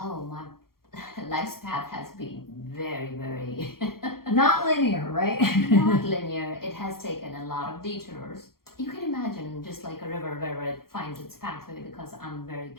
my life's path has been very, very... Not linear, right? Not linear. It has taken a lot of detours. You can imagine just like a river where it finds its pathway, because I'm very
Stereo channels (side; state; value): right; late; 0.93 ms